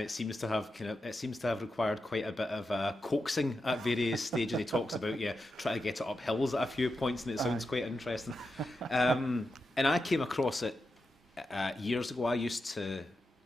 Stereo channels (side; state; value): both; normal; correlation 0.88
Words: seems to have required quite a bit of coaxing at various stages. He talks about trying to get it up hills at a few points, and it sounds quite interesting. And I came across it years ago. I used to